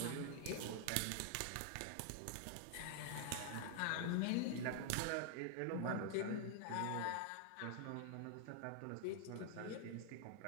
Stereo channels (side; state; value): both; different; correlation 0.00